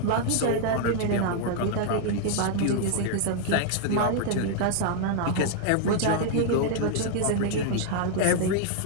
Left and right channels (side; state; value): both; different; correlation 0.00